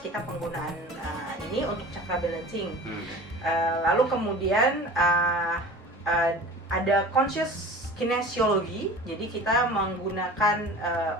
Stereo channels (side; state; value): both; normal; correlation 0.39